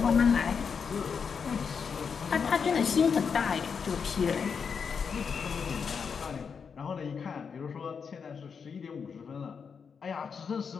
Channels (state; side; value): quieter; right; 6.2 dB